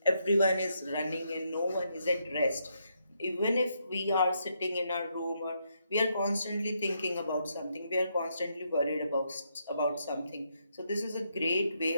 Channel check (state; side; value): inverted; both; correlation -0.78